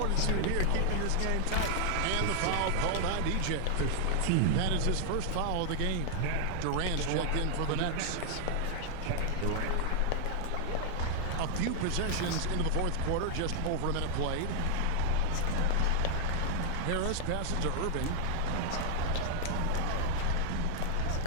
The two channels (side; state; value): both; different; correlation 0.00